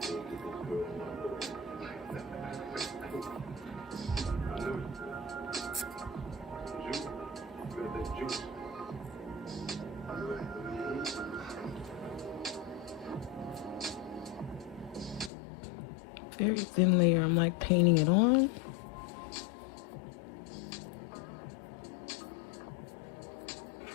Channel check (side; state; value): right; drops out; at 15.3 s